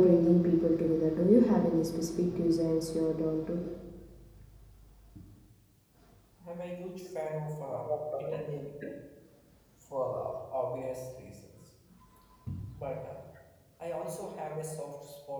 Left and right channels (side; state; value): both; identical; correlation 1.00